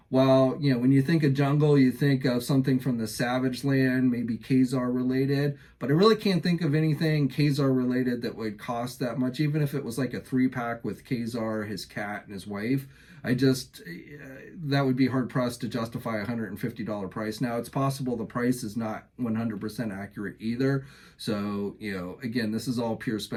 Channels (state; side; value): identical; both; correlation 1.00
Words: well, when you think of jungle, you think of something from the Savage Land, maybe Khazar related, but I really can't think of anything Khazar related that would cost that much, even if it was like a 3-pack with Khazar, his cat, and his wife. That would be hard pressed to justify a $150 price. Now, it's possible the price is not 100% accurate either. So, again, this is all pure